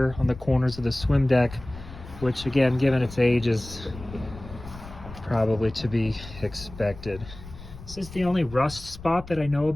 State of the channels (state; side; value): noise; left; rumble, 15 dB below the sound